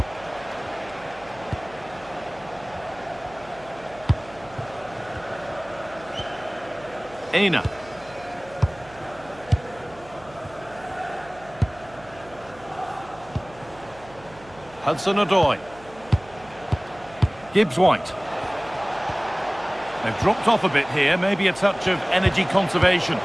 Aina. Hudson-Odoi. Gibbs-White. They've dropped off a bit here, maybe a touch of energy conservation.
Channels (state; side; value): noise; right; hum, 22 dB below the sound